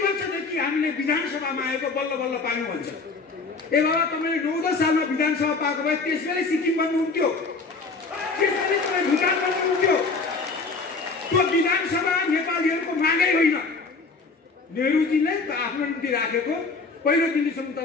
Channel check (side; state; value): right; quieter; 4.2 dB